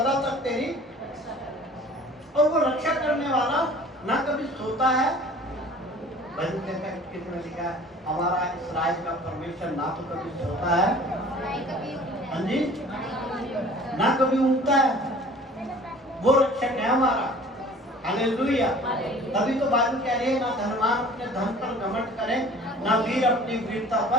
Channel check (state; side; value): normal; both; correlation 0.47